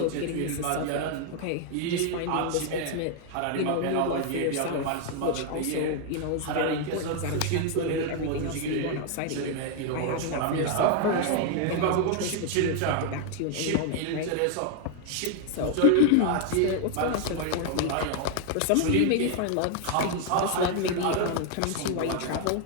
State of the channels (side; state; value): both; different; correlation 0.00